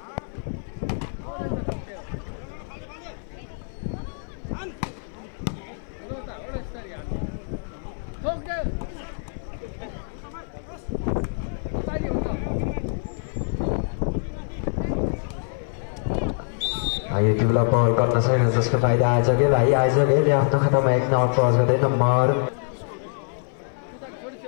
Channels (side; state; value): right; silent; 58 dB below the other